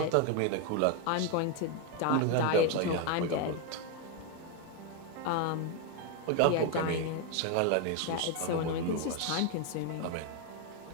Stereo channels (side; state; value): both; different; correlation 0.02